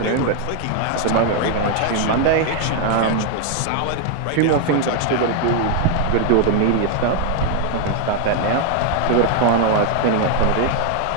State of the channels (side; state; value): both; different; correlation 0.00